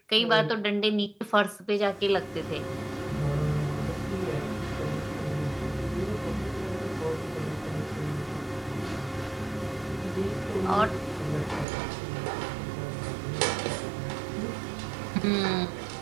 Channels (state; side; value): drops out; left; at 11.7 s